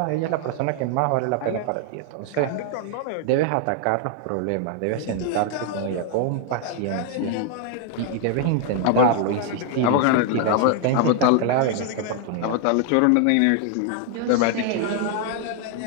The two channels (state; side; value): different; both; correlation 0.00